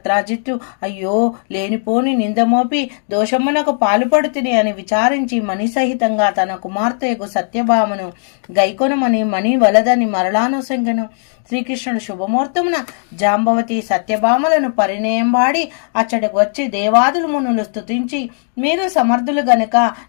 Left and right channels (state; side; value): silent; right; digital silence